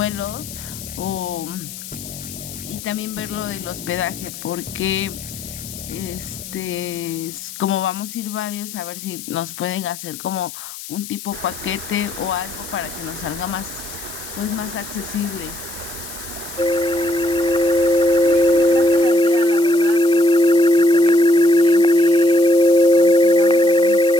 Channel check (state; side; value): noise; left; hiss, 12 dB below the sound